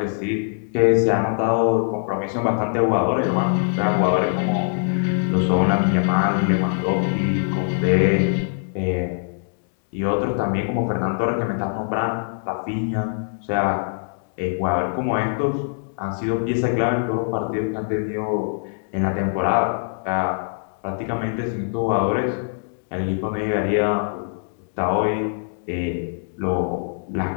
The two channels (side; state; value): right; silent; digital silence